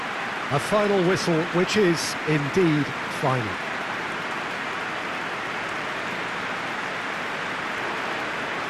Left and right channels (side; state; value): both; identical; correlation 1.00